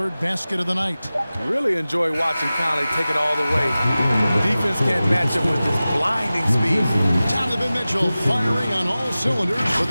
basket of the night. Really enjoy watching Conley take it all the way. Defense can't match him with his blinding speed. Donovan Mitchell firing on all cylinders for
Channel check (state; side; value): inverted; both; correlation -0.96